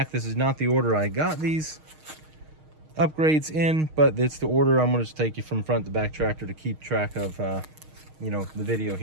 This is not the order I got these upgrades in, but it's the order I'm gonna just take you from front to back tractor to keep track of the video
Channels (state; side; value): late; left; 6.4 ms